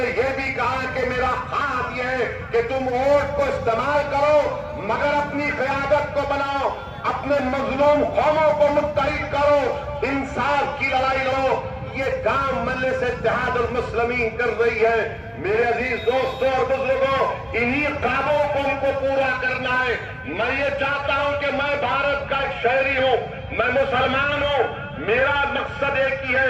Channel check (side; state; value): both; identical; correlation 1.00